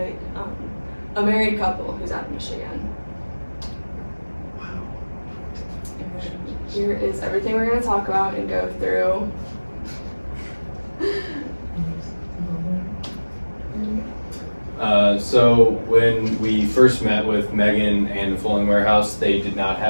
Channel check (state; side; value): inverted; both; correlation -1.00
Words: a married couple who's out of Michigan. Wow. And here is everything we're going to talk about and go through. So when we first met with Megan and the Fowling Warehouse, they did not